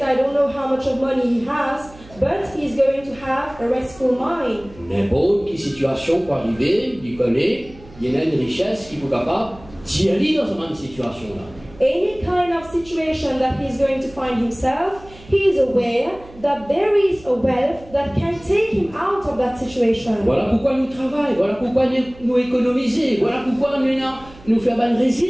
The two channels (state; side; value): noise; right; hum, 22 dB below the sound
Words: I don't know how much of money he has, but he's going to have a restful mind. N'importe quelle situation peut arriver, il connaît, il y a une richesse qui est capable d'y aller dans cette même situation-là. Any kind of situation that he's going to find himself, he is aware that there is a wealth that can take him out of that situation. Voilà pourquoi nous travaillons, voilà pourquoi nous économisons, voilà pourquoi nous faisons une